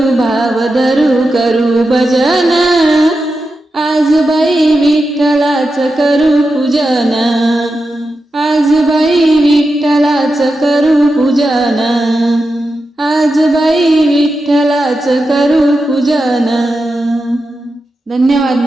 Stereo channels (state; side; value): normal; both; correlation 0.90